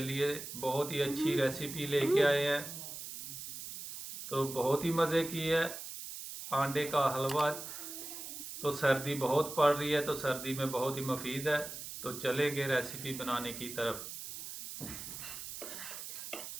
लिए बहुत ही अच्छी रेसिपी लेके आए हैं। तो बहुत ही मज़े की है, अंडे का हलवा। तो सर्दी बहुत पड़ रही है, तो सर्दी में बहुत ही मुफीद है। तो चलेंगे रेसिपी बनाने की तरफ।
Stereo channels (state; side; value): noise; right; hiss, 9 dB below the sound